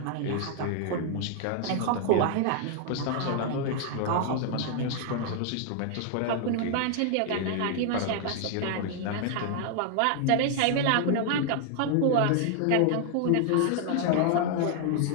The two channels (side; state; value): both; different; correlation 0.00